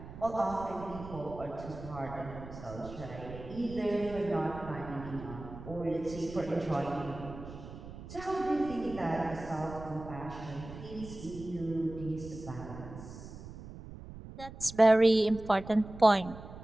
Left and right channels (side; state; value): right; noise; rumble, 13 dB below the sound